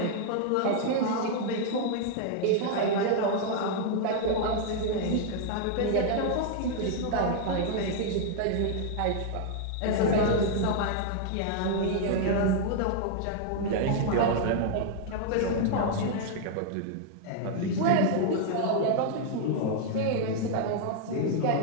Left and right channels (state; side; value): different; both; correlation 0.00